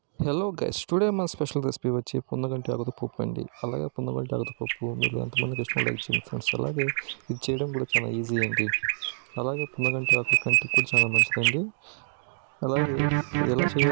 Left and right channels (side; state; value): left; silent; digital silence